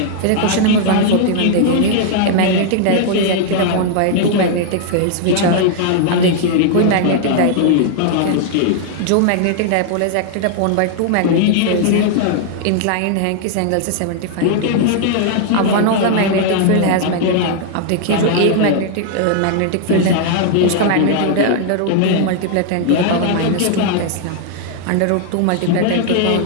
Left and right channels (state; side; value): different; both; correlation 0.00